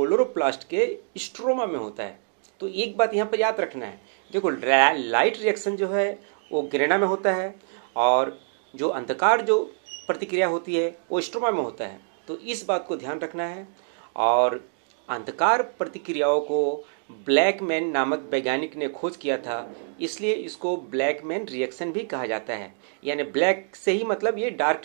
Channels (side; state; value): left; silent; digital silence